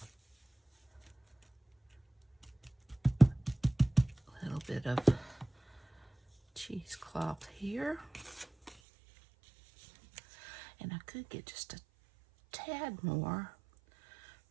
little bit of cheesecloth here. And I could get just a tad more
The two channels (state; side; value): drops out; left; at 8.8 s